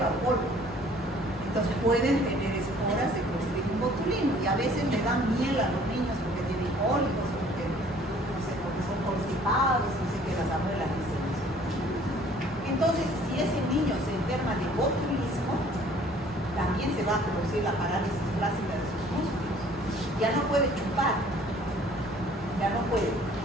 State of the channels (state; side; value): normal; both; correlation 0.55